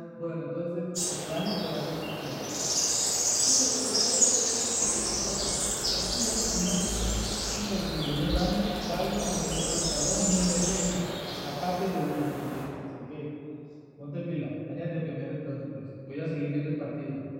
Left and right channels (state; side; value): identical; both; correlation 1.00